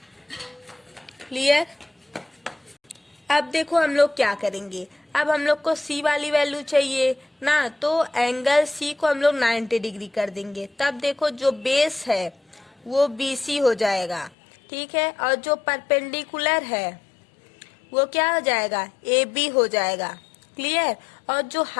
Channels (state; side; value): drops out; right; at 14.3 s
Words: क्लियर? अब देखो हम लोग क्या करेंगे। अब हम लोग को C वाली वैल्यू चाहिए ना, तो एंगल C को हम लोग 90 डिग्री कर देंगे। तब देखो जो बेस है वो BC हो जाएगा। ठीक है, और जो परपेंडिकुलर है वो क्या हो जाएगा? AB हो जाएगा। क्लियर? और जो